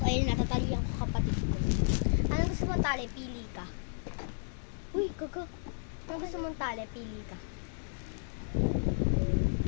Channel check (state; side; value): silent; right; digital silence